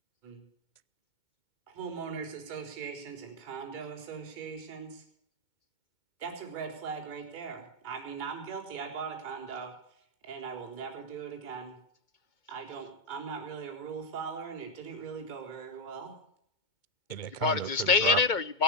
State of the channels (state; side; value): late; right; 2.2 ms